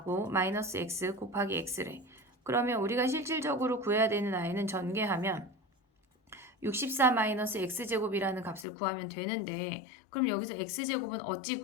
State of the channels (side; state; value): right; drops out; at 8.7 s